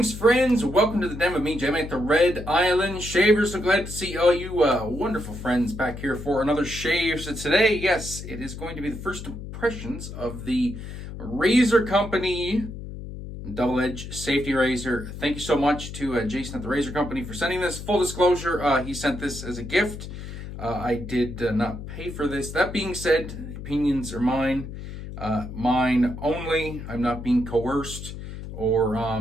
friends. Welcome to the den with me, Jim at the Red Island Shaver. So glad to see all you wonderful friends back here for another shave. So today, yes, it is going to be the first impressions of the Razor Company double-edge safety razor. Thank you so much to Jason at the Razor Company for sending this. Full disclosure, he sent this as a gift. I did not pay for this. That being said, opinions are mine. Mine only. I'm not being coerced or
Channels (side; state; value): left; noise; hum, 10 dB below the sound